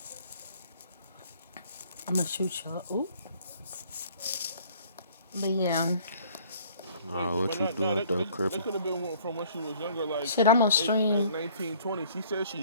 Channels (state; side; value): inverted; both; correlation -0.56